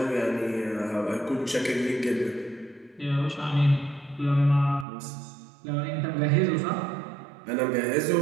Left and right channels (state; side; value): drops out; left; at 4.9 s